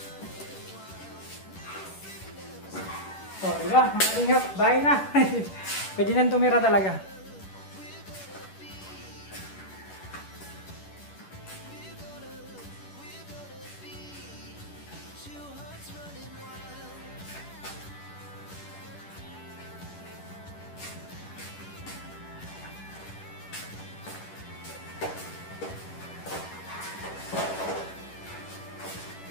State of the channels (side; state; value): right; late; 10 ms